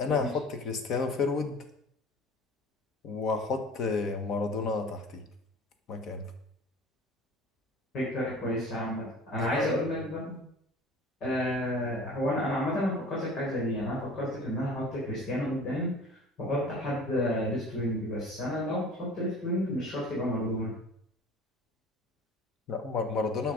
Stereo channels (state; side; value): normal; both; correlation 0.43